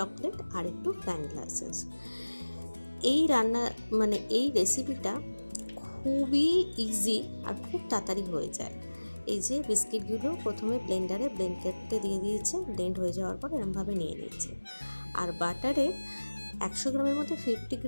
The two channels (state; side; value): inverted; both; correlation -1.00